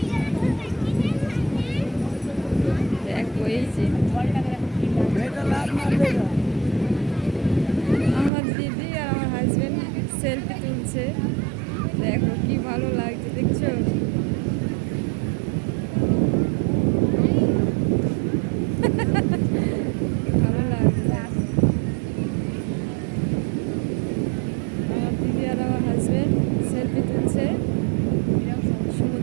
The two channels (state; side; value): drops out; left; at 8.3 s